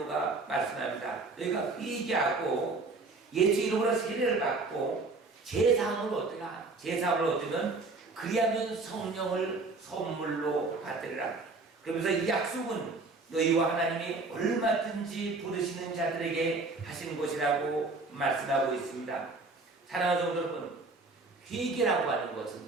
말씀합니다. 너희가 회개하고 예수 이름으로 세례를 받고 제사함을 얻으라. 제사함을 얻으면 그리하면 성령을 선물로 받으리라. 그러면서 이 약속은 너희와 하나님이 얼마든지 부르시는 자들에게 하신 것이라고 말씀하고 있습니다. 사랑하는 성도 여러분, 회개라고 하는 것은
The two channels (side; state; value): left; quieter; 3.6 dB